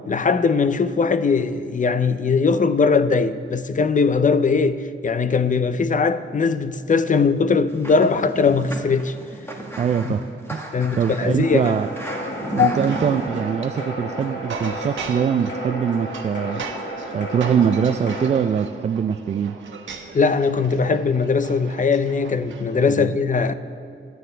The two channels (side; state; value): both; normal; correlation 0.48